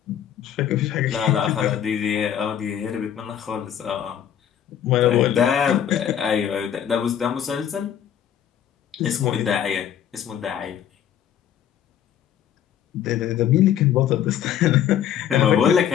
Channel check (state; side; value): quieter; right; 9.8 dB